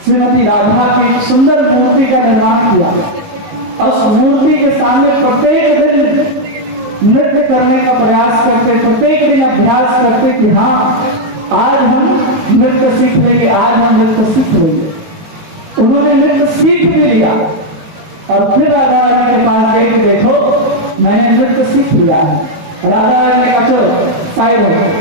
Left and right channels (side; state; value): left; late; 18 ms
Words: श्रीमती राधा की सुंदर मूर्ति का निर्माण किया। उस मूर्ति के सामने प्रत्येक दिन नृत्य करने का प्रयास करते, प्रत्येक दिन अभ्यास करते कि हाँ आज हम नृत्य सीख लेंगे, आज हम नृत्य सीख लेंगे। उन्होंने नृत्य सीख भी लिया, और फिर राधा रानी के पास गए कि देखो मैंने नृत्य सीख लिया है। राधा रानी ने कहा चलो साइड हो,